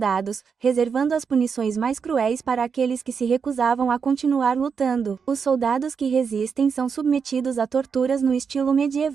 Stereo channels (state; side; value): quieter; left; 6.1 dB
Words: reservando as punições mais cruéis para aqueles que se recusavam a continuar lutando. Os soldados que resistem são submetidos a torturas no estilo